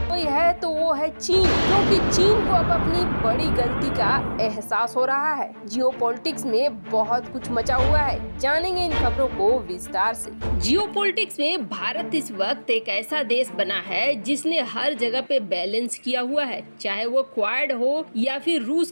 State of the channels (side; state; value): both; inverted; correlation -1.00